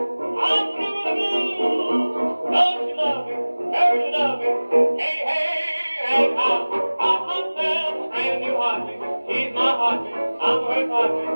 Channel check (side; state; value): both; inverted; correlation -1.00